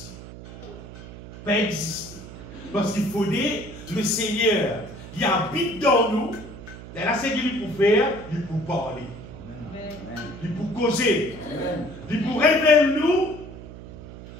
Pas exister. Parce qu'il faut dire, le Seigneur, il habite dans nous. Et là, c'est qu'il peut faire, il peut parler. Amen. Il peut causer. Amen. Il peut révéler nous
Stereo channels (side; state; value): right; noise; hum, 14 dB below the sound